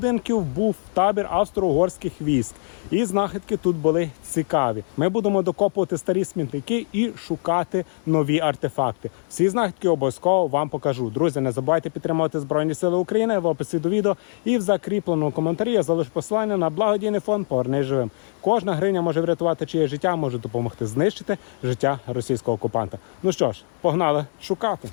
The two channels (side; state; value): right; silent; digital silence